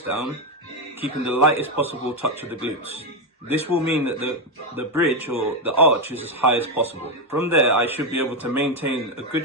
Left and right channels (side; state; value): both; normal; correlation 0.06